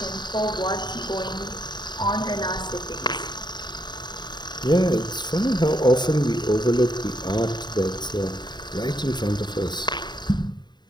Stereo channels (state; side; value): late; right; 0.21 ms